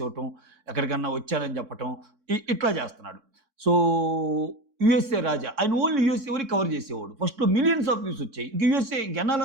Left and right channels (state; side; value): late; left; 4.6 ms